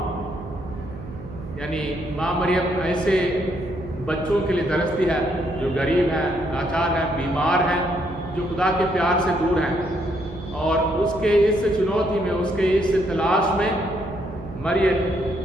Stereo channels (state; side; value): noise; right; hum, 13 dB below the sound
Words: यानी माँ मरियम ऐसे बच्चों के लिए तरसती है जो गरीब हैं, लाचार हैं, बीमार हैं, जो खुदा के प्यार से दूर हैं। और उसके इस चुनौती में, उसके इस तलाश में मरियम